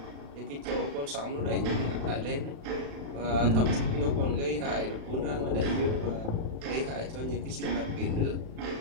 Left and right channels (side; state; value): left; late; 36 ms